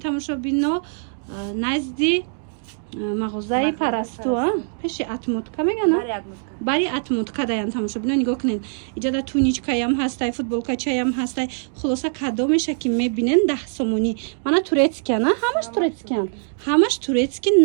назди мағозаи парасту пеши атмотка мегана бари атмотка даян тамошобино нигоҳ кунед иҷада туничкаям ҳастай футболкачаям ҳастай хулоса кадомеша ки мебинен 10 сомонӣ мана турецкиян ҳамаш турецки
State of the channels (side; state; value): left; silent; digital silence